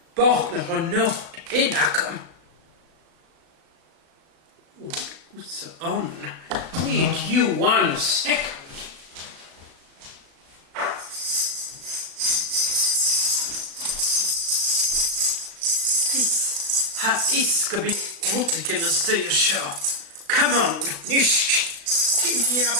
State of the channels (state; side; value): late; left; 36 ms